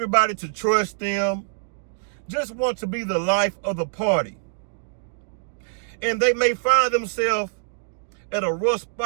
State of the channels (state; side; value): silent; left; digital silence